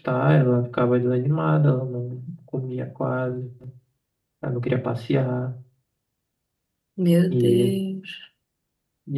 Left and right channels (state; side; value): identical; both; correlation 1.00